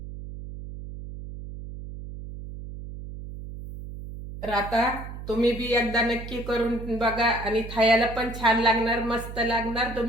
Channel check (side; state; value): right; noise; hum, 11 dB below the sound